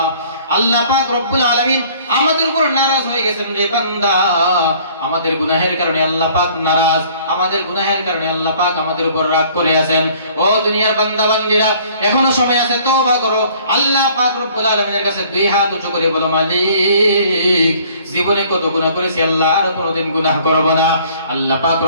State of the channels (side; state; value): both; inverted; correlation -0.55